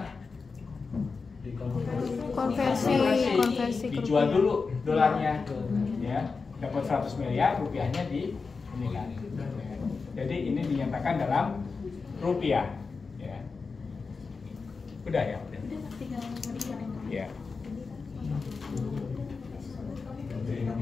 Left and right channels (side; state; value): right; quieter; 4.6 dB